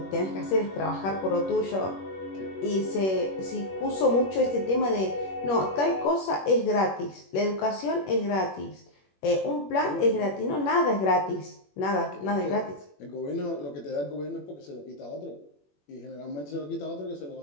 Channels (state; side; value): late; right; 21 ms